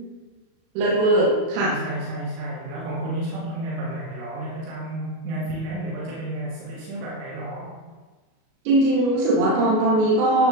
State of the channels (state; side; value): late; left; 37 ms